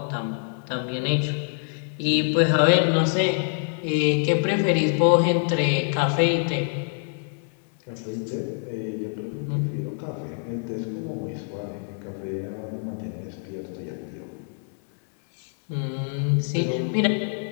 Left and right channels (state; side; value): silent; right; 61 dB below the other